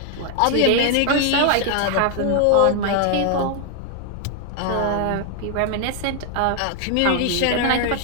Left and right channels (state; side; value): different; both; correlation 0.00